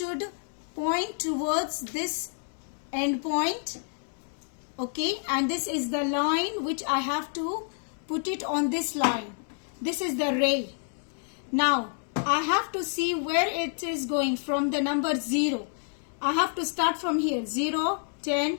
point towards this end point. Okay, and this is the line which I have to put it on this line. This is the ray. Now I have to see where it is going from the number 0. I have to start from here. 0, 10,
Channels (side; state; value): right; silent; 59 dB below the other